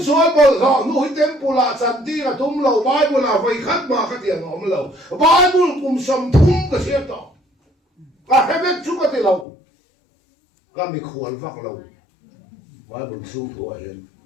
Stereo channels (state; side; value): drops out; right; at 9.5 s